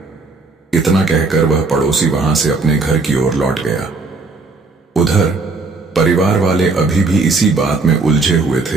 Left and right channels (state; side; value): quieter; left; 3.8 dB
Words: इतना कहकर वह पड़ोसी वहां से अपने घर की ओर लौट गया। उधर परिवार वाले अभी भी इसी बात में उलझे हुए